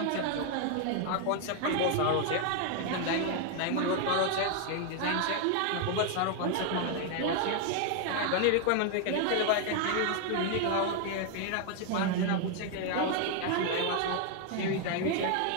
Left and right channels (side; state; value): both; different; correlation 0.00